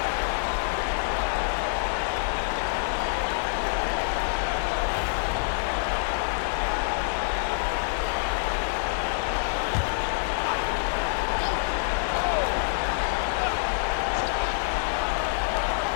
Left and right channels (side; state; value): right; silent; digital silence